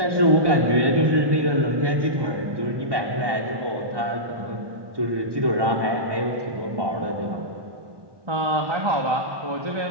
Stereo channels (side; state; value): left; late; 1.2 ms